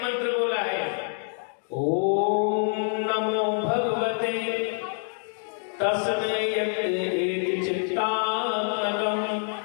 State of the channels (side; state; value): right; silent; digital silence